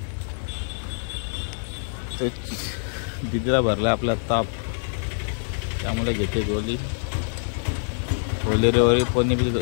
दिदीला भरलाय आपला ताप त्यामुळे घेते गोली रे कोणी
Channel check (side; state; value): right; silent; digital silence